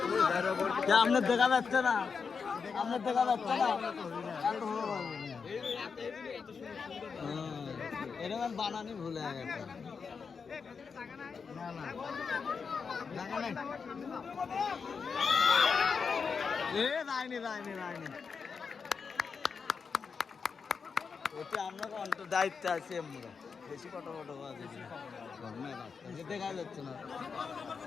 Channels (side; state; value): right; quieter; 5.6 dB